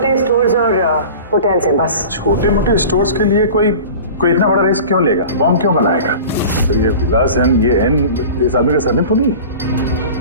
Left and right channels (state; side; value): inverted; both; correlation -0.38